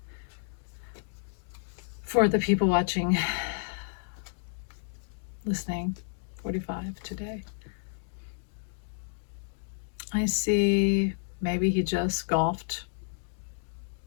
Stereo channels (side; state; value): right; silent; digital silence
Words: For the people watching, listening, 45 today. I see maybe he just golfed